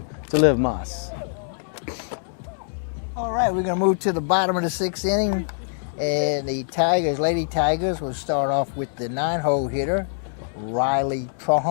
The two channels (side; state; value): right; silent; digital silence